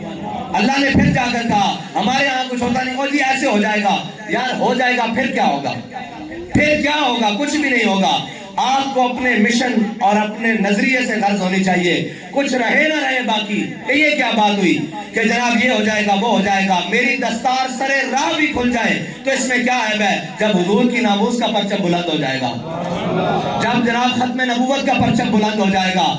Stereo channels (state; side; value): identical; both; correlation 1.00